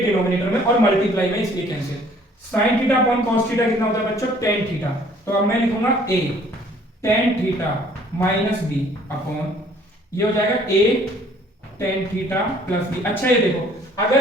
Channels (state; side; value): normal; both; correlation 0.57